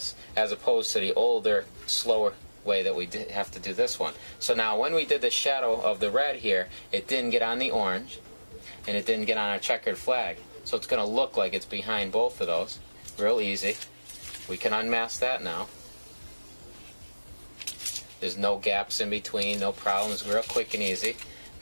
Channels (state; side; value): inverted; both; correlation -1.00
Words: as opposed to the older, slower way that we have to do this one. So now when we did the shadow of the red here, it didn't get on the orange and it didn't get on our checkered flag. So it's going to look like it's behind both of those. Real easy. We can unmask that now. There's no gaps in between, no problems, real quick and easy.